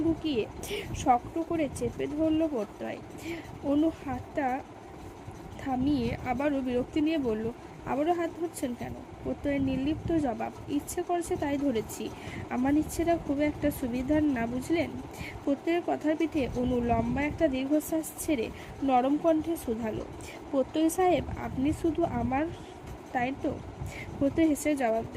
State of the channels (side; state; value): both; identical; correlation 1.00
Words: ঢুকিয়ে শক্ত করে চেপে ধরল প্রত্যয়। অনু হাতটা থামিয়ে আবারও বিরক্তি নিয়ে বলল, আবারও হাত ধরছেন কেন? প্রত্যয়ের নির্লিপ্ত জবাব, ইচ্ছে করছে তাই ধরেছি। আমার ইচ্ছেটা খুব একটা সুবিধার না, বুঝলেন? প্রত্যয়ের কথার পিঠে অনু লম্বা একটা দীর্ঘশ্বাস ছেড়ে নরম কণ্ঠে শুধালো, প্রত্যয় সাহেব আপনি শুধু আমার, তাই তো? প্রত্যয় হেসে জবাব